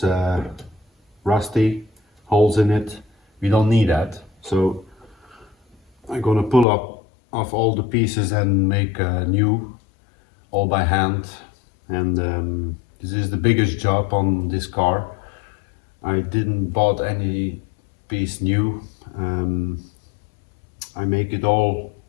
rusty, holes in it. We don't need that. So I'm gonna pull up off all the pieces and make new, all by hand. And this is the biggest job on this car. I didn't bought any piece new. I make it all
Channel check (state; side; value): drops out; right; at 6.7 s